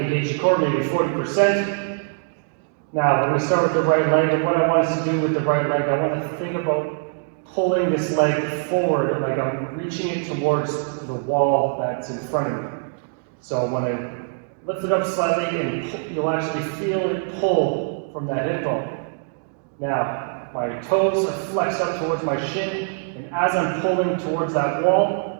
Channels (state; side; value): silent; left; digital silence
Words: the core, maybe 40%. Now, we're going to start with the right leg, and what I want us to do with the right leg, I want to think about pulling this leg forward, like I'm reaching it towards the wall that's in front of me. So when I lift it up slightly, and you'll actually feel it pull from that hip bone. Now, my toes are flexed up towards my shin, and as I'm pulling towards that wall,